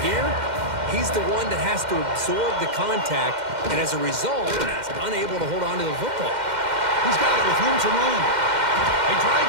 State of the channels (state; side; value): late; left; 2.1 ms